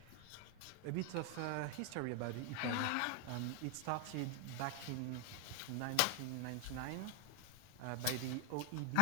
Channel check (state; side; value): different; both; correlation 0.00